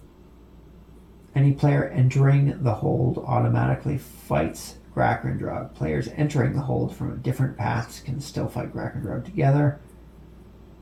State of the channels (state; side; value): identical; both; correlation 1.00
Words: Any player entering the hold automatically fights Grahkrindrog. Players entering the hold from different paths can still fight Grahkrindrog together.